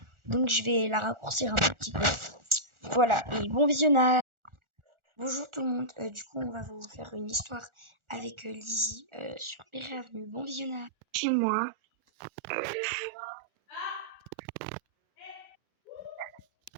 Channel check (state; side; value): late; left; 1.4 ms